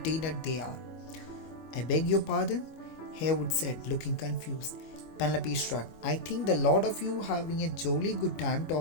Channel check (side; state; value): right; late; 25 ms